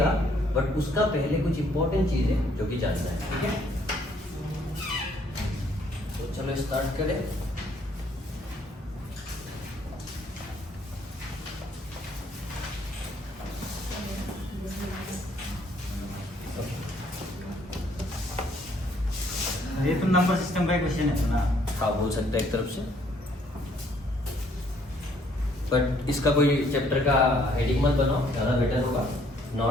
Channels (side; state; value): both; normal; correlation 0.65